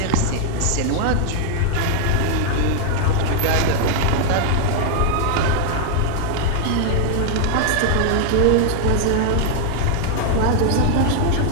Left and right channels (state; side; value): different; both; correlation 0.00